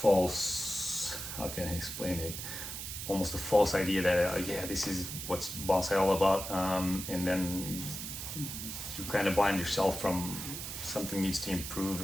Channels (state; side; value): noise; right; hiss, 7 dB below the sound